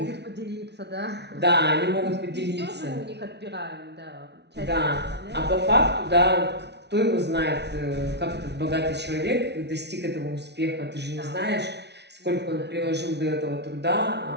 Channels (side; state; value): left; late; 0.50 ms